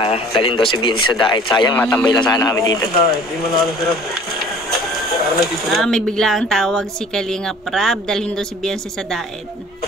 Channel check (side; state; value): both; normal; correlation 0.49